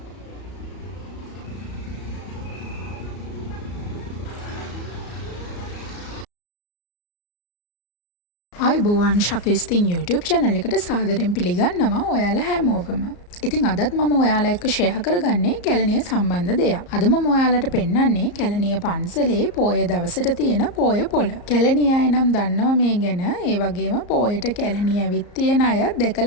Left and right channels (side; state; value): right; late; 34 ms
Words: ආයුබෝවන් ශකස්තින් YouTube channel එකට සාදරයෙන් පිළිගන්නවා ඔයාලා හැමෝවම. ඉතින් අදත් මම ඔයාලා එක්ක ෂෙයා කරගන්නේ කැලණිය සම්බන්ධ දෙයක්. අද මම ඔයාලට පෙන්වන්නේ කැලණිය පන්සලේ පොය දවසට තියෙන පොය පොළ. කැලණිය අය නම් දන්නවා මේ ගැන. ඒ වගේම පොයට කැලණිය ඇවිත් තියෙන අය